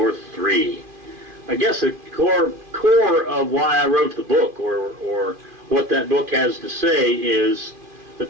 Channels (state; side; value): late; left; 2.4 ms